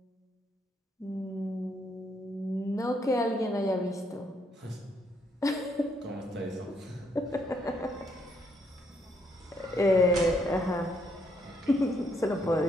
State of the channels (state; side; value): normal; both; correlation 0.73